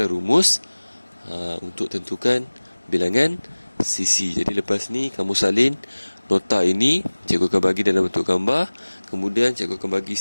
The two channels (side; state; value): both; inverted; correlation -1.00